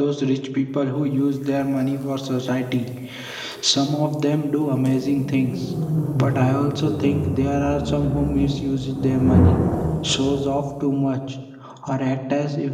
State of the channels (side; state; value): both; identical; correlation 1.00